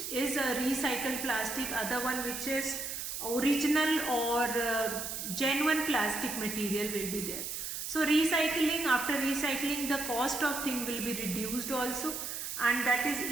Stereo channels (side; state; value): right; noise; hiss, 5 dB below the sound